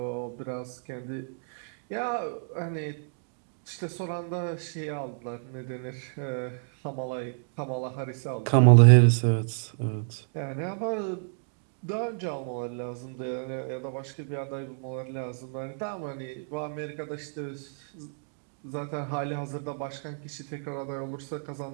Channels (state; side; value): silent; left; digital silence